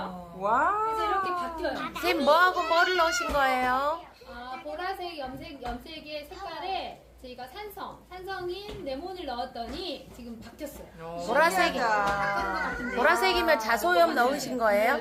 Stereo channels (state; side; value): identical; both; correlation 1.00